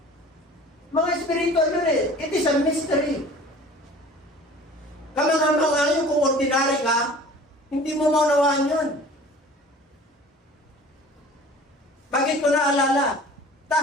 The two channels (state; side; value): normal; both; correlation 0.45